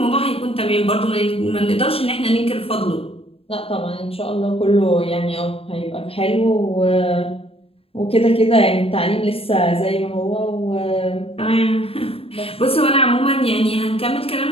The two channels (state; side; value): late; right; 0.28 ms